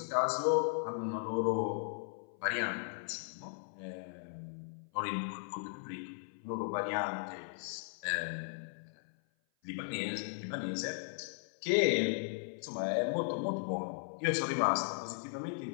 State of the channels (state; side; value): silent; right; 53 dB below the other